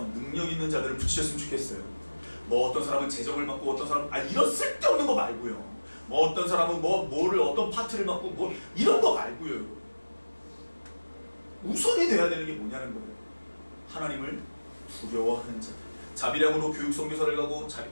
능력 있는 자들을 붙이셨으면 좋겠어요. 뭐 어떤 사람은 재정을 맡고 어떤 사람은 이런 쓸데없는 거 말고요. 뭐 어떤 사람은 뭐를 어떤 파트를 맡고 뭐 이런 거 말고요. 우선이 돼야 되는 게 뭐냐는 거예요. 하나님을 두려워하는 자들. 자비량으로 교육 선교사를 가고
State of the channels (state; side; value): inverted; both; correlation -1.00